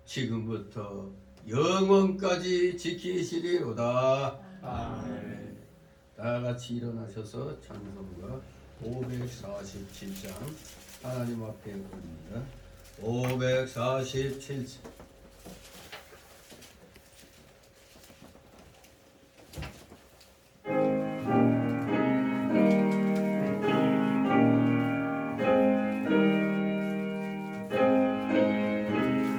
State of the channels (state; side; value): identical; both; correlation 1.00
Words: 지금부터 영원까지 지키시리로다. 아멘. 다 같이 일어나셔서 찬송가 547장 하나님 앞에 올립니다. 547장.